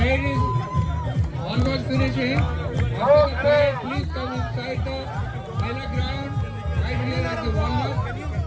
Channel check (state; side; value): identical; both; correlation 1.00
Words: is almost finishing. After the parade, please come inside the Mela ground, right here at the walnut,